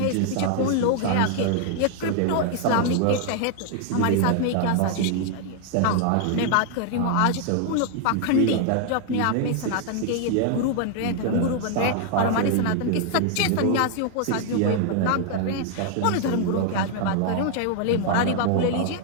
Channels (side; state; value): both; different; correlation 0.00